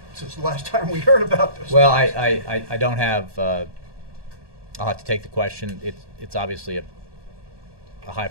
since the last time we heard about this? Well, I don't have. I'll have to take the question. It's obviously a high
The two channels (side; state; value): left; late; 1.2 ms